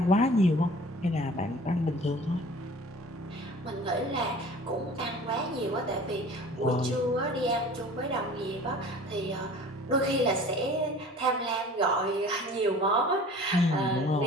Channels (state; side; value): normal; both; correlation 0.45